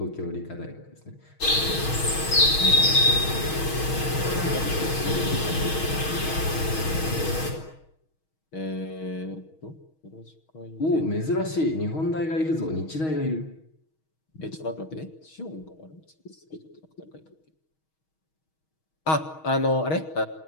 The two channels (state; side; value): late; right; 6.3 ms